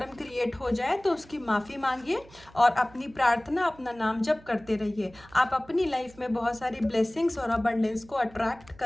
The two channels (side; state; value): right; noise; hum, 24 dB below the sound